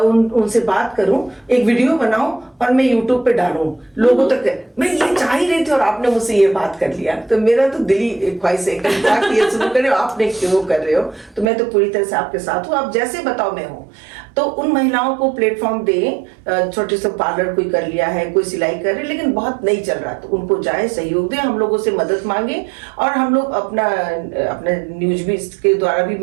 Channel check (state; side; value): drops out; left; at 11.5 s